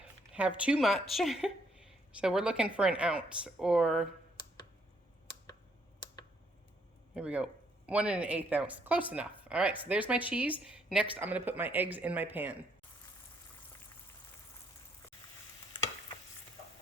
have too much. So we're looking for 1 ounce, or here we go, 1 1/8 ounce, close enough. All right, so there's my cheese. Next, I'm gonna put my eggs in my pan.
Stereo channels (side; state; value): both; normal; correlation 0.70